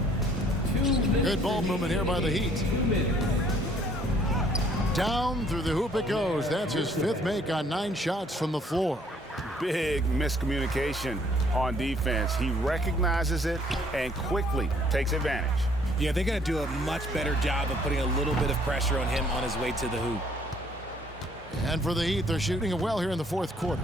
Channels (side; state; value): both; normal; correlation 0.62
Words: Good ball movement here by the Heat. Down through the hoop it goes. That's his 5th make on 9 shots from the floor. Big miscommunication on defense. He recognizes it and quickly takes advantage. Yeah, they got to do a much better job of putting a little bit of pressure on him on his way to the hoop. And for the Heat, they're shooting it well here in the 4th quarter,